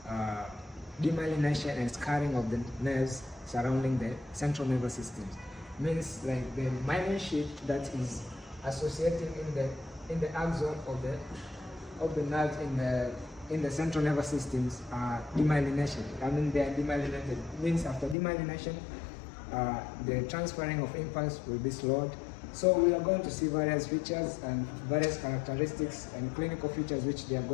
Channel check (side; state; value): right; drops out; at 18.2 s